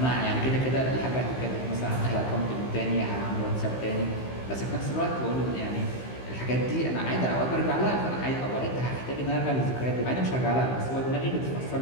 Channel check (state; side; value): late; right; 15 ms